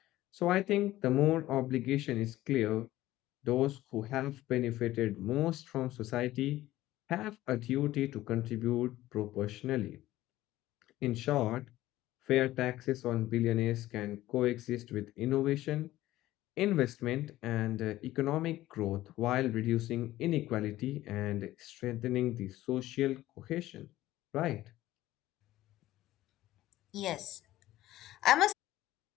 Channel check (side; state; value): right; quieter; 15.6 dB